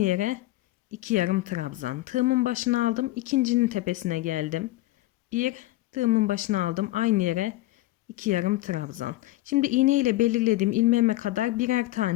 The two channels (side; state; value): right; quieter; 17.4 dB